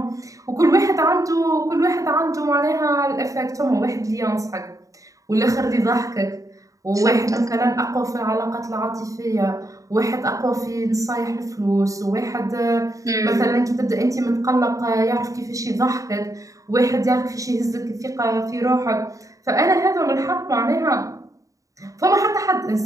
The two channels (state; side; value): late; left; 0.16 ms